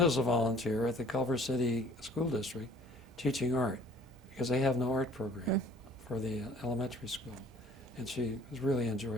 as a volunteer at the Culver City School District, teaching art, because they have no art program for the elementary school. And she has really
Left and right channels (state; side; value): normal; both; correlation 0.53